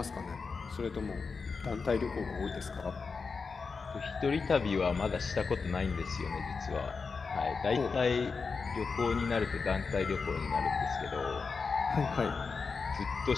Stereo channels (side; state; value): right; quieter; 4.9 dB